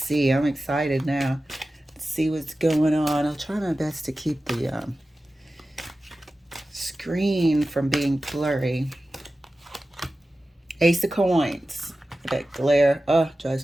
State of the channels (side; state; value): both; normal; correlation 0.94